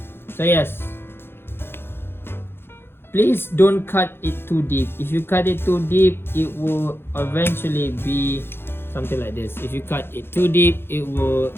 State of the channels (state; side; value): late; right; 0.11 ms